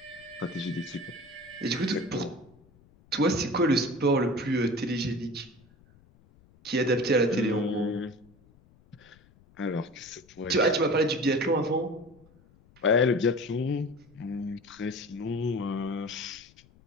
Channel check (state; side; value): noise; left; rumble, 28 dB below the sound